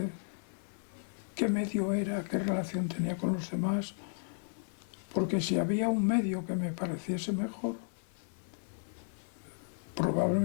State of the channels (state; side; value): silent; right; 55 dB below the other